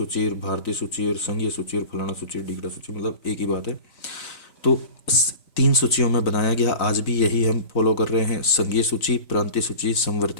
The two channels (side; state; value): right; late; 3.9 ms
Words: भारतीय सूची और संघीय सूची और फलाना सूची, ढीकड़ा सूची, मतलब एक ही बात है। तो 3 सूचियों में बनाया गया। आज भी यही हम फॉलो कर रहे हैं, संघीय सूची, प्रांतीय सूची,